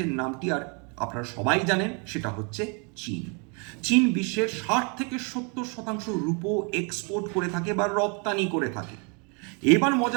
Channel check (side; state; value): left; quieter; 34.6 dB